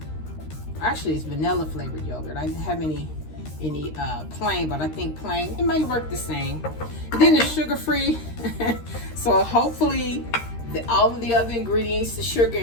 actually it's vanilla flavored yogurt. I didn't have any plain, but I think plain, it might work the same. And then it's sugar free, so hopefully all of the other ingredients, the sugar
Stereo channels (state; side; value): late; right; 13 ms